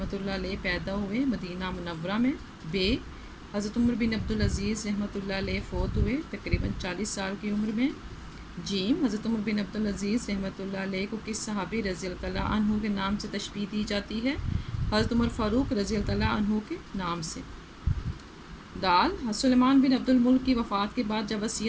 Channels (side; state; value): both; identical; correlation 1.00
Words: अलैह पैदा हुए मदीना मुनव्वरा में। बे हज़रत उमर बिन अब्दुल अज़ीज़ रहमतुल्लाह अलैह फ़ौत हुए तकरीबन 40 साल की उम्र में। जीम हज़रत उमर बिन अब्दुल अज़ीज़ रहमतुल्लाह अलैह को किस सहाबी रज़ी अल्लाह तआला अन्हु के नाम से तशबीह दी जाती है? हज़रत उमर फ़ारूक रज़ी अल्लाह तआला अन्हु के नाम से। दाल सुलेमान बिन अब्दुल मुल्क की वफ़ात के बाद जब